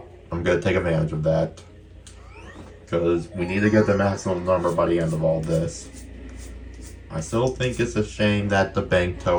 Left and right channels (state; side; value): identical; both; correlation 1.00